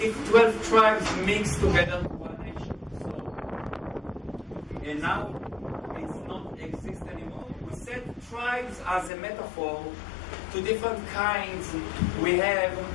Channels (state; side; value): drops out; right; at 9.1 s